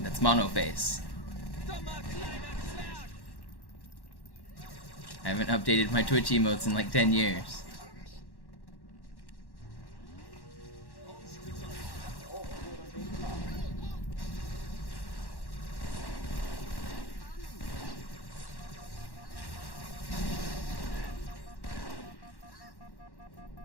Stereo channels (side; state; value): right; late; 1.1 ms